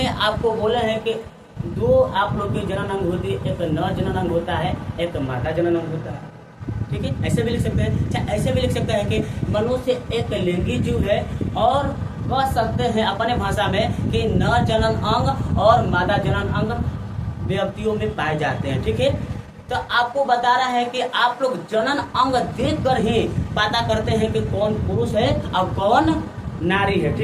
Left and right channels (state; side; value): identical; both; correlation 1.00